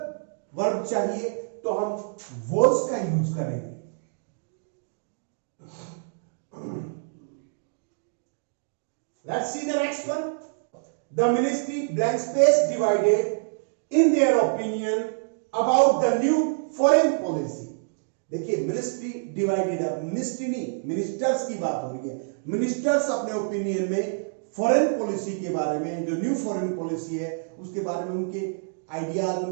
वर्ब चाहिए तो हम वॉज का यूज करेंगे. Let's C the next one. The ministry blank space divided in their opinion about the new foreign policy. देखिए, मिनिस्ट्री डिवाइडेड है, मिनिस्ट्री नहीं, मिनिस्टर्स की बात हो रही है. मिनिस्टर्स अपने ओपिनियन में फॉरेन पॉलिसी के बारे में, जो न्यू फॉरेन पॉलिसी है उसके बारे में उनके आइडियाज,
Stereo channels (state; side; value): silent; left; digital silence